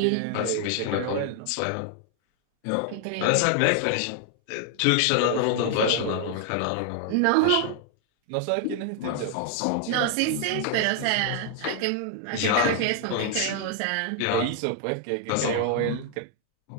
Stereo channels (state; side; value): different; both; correlation 0.00